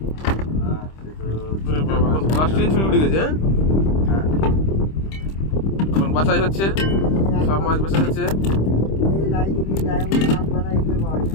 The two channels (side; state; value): right; late; 26 ms